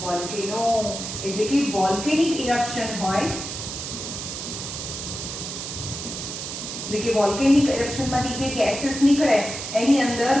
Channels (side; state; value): right; noise; hiss, 7 dB below the sound